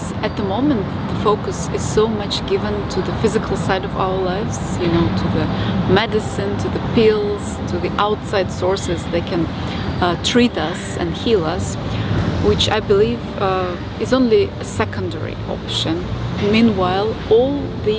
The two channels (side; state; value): both; identical; correlation 1.00